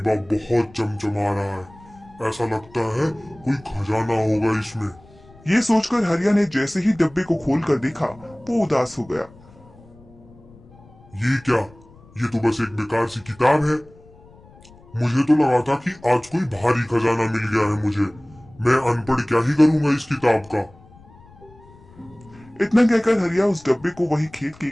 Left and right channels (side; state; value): left; noise; rumble, 25 dB below the sound